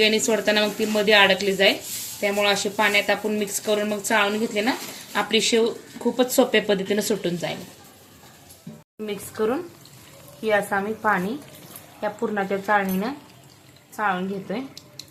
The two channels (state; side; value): identical; both; correlation 1.00